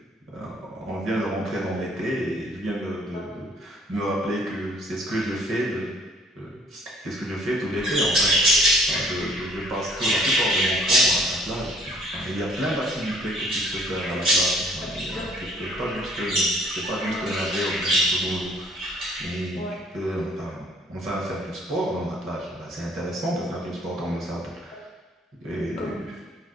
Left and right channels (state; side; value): normal; both; correlation 0.59